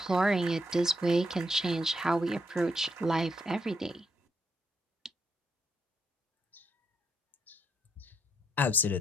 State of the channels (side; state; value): both; normal; correlation 0.77